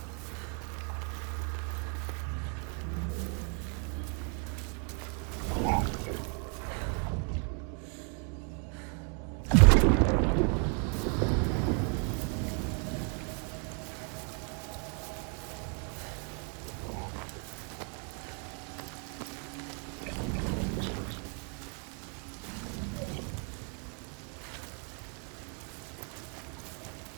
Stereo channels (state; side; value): quieter; left; 39.5 dB